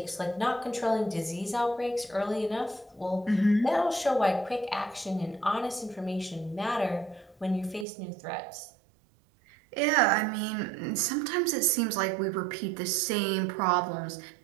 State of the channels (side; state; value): left; drops out; at 7.9 s